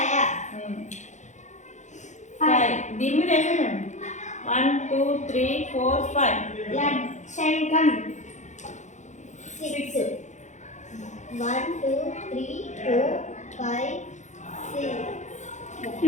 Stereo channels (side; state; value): right; late; 0.35 ms